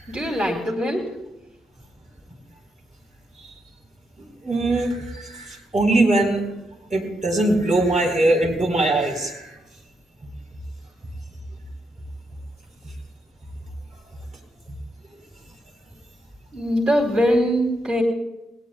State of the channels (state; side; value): normal; both; correlation 0.81